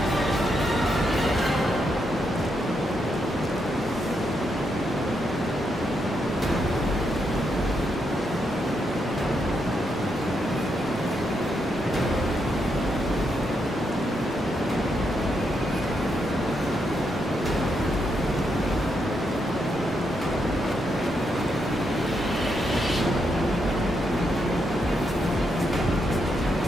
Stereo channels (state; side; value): normal; both; correlation 0.80